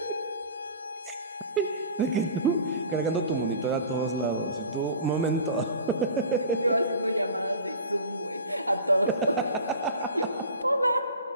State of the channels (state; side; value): inverted; both; correlation -0.37